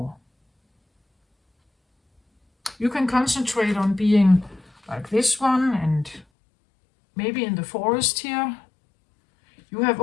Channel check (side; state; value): right; drops out; at 6.2 s